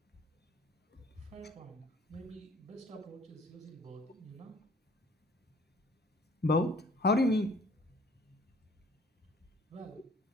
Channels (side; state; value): both; normal; correlation 0.56